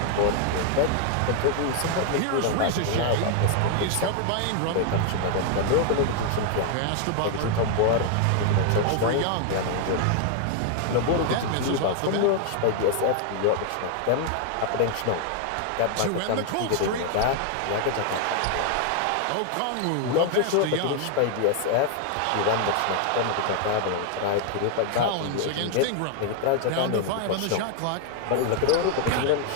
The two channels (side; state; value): both; different; correlation 0.00